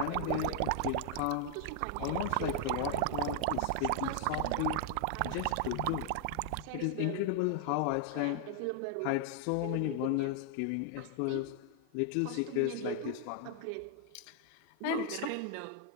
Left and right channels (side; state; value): both; different; correlation 0.00